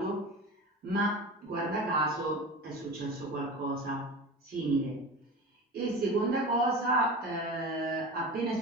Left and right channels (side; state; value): both; normal; correlation 0.32